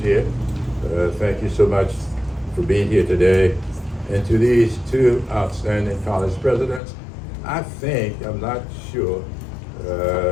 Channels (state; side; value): drops out; right; at 6.8 s